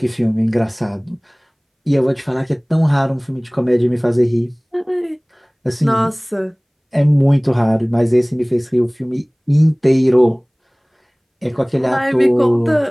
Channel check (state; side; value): identical; both; correlation 1.00